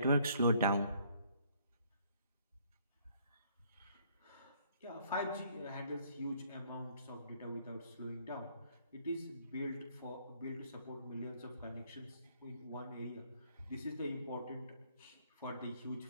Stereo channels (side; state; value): both; inverted; correlation -0.64